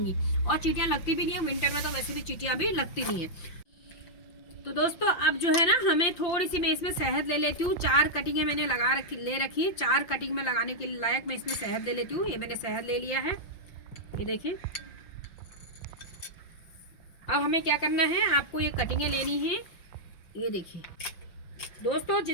और चींटियां लगती भी नहीं है विंटर में, तो वैसे भी चींटियां भी लगती नहीं है। तो दोस्तों अब जो है ना, हमें थोड़ी सी मैं इसमें शहद ले लेती हूँ। 4 कटिंगें मैंने ले रखी है, 4 कटिंग में लगाने के लायक मैं इसमें शहद ले लेती हूँ। ये मैंने शहद ले लिया है, ये देखिए। अब हमें क्या करना है, आपको ये कटिंगें लेनी है, ये देखिए। दोस्तों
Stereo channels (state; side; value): late; right; 5.7 ms